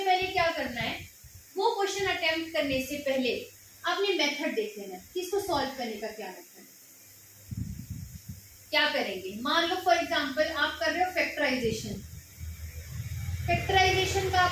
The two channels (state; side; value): identical; both; correlation 1.00